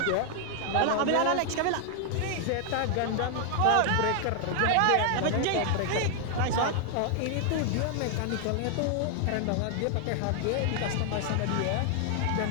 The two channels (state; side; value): different; both; correlation 0.00